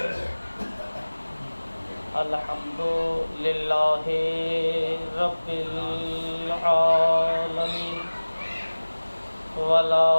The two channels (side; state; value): both; inverted; correlation -1.00